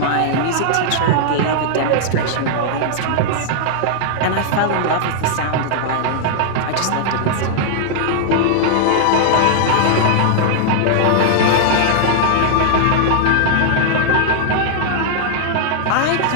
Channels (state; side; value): different; both; correlation -0.01